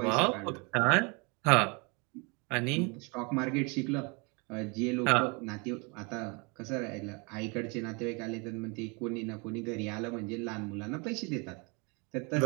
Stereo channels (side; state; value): left; quieter; 31.0 dB